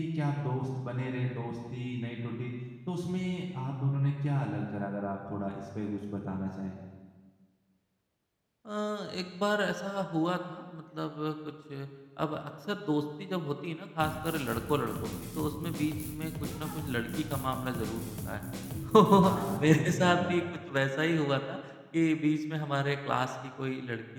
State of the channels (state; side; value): identical; both; correlation 1.00